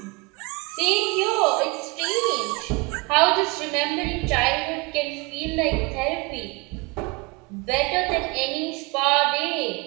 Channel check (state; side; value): quieter; left; 26.8 dB